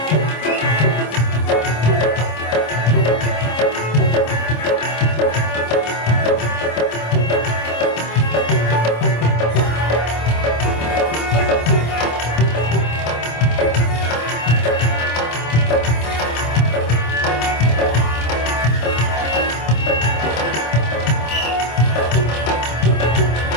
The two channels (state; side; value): late; right; 26 ms